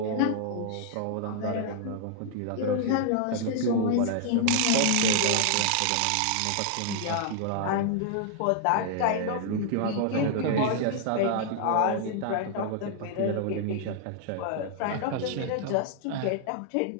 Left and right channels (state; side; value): different; both; correlation 0.00